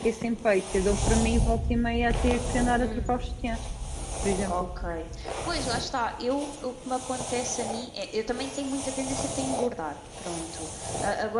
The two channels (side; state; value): both; identical; correlation 1.00